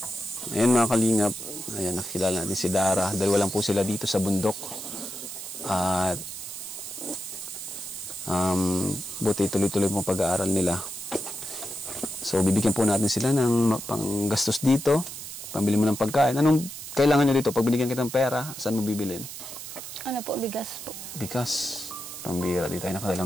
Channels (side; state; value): right; noise; hiss, 10 dB below the sound